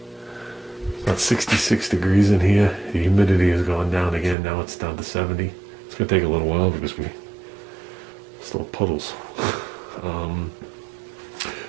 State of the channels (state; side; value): drops out; left; at 4.4 s